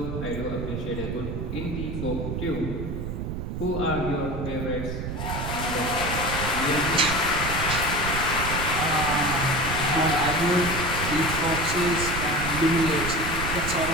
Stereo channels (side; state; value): right; noise; rumble, 4 dB below the sound